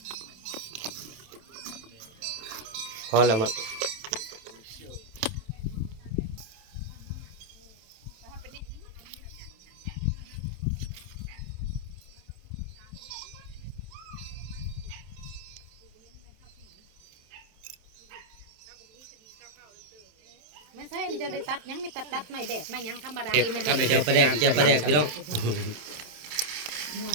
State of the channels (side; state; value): left; late; 27 ms